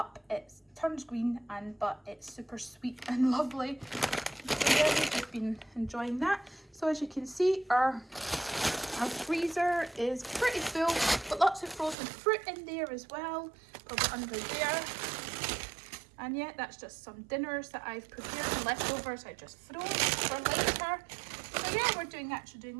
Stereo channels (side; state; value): left; drops out; at 12.0 s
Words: It turns green, but it's super sweet and lovely. So yeah, we've just been enjoying that. So as you can see, our freezer is pretty full, but lots of frozen fruit in there as well, over under there. And yeah, that's just some dinners that I've prepared, and leftovers I just froze for later. So yeah, we're actually doing